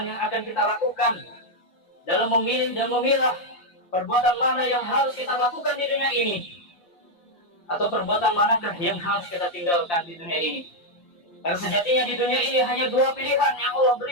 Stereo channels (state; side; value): late; right; 5.7 ms